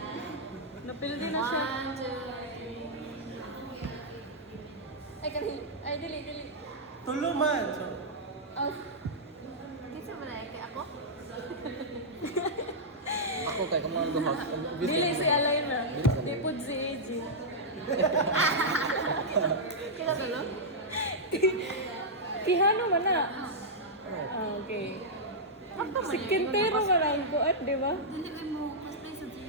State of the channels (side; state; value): both; normal; correlation -0.09